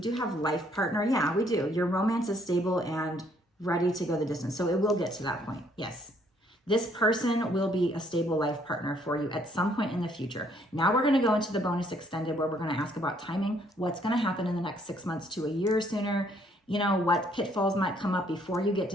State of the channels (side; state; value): both; normal; correlation 0.66